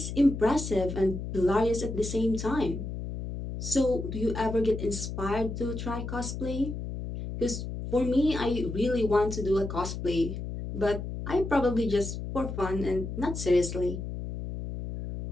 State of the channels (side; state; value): left; noise; hum, 6 dB below the sound